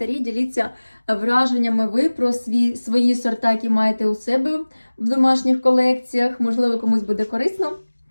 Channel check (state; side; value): inverted; both; correlation -1.00